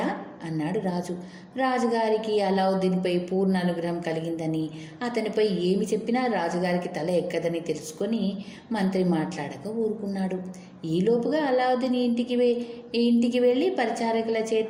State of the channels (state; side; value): identical; both; correlation 1.00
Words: అన్నాడు రాజు. రాజుగారికి అల్లావుద్దీన్పై పూర్ణ అనుగ్రహం కలిగిందని, అతనిపై ఏమి చెప్పినా రాజుగారికి తల ఎక్కదని తెలుసుకొని మంత్రి మాట్లాడక ఊరుకున్నాడు. ఈలోపుగా అల్లావుద్దీన్ ఇంటికి వెళ్ళి పరిచారకుల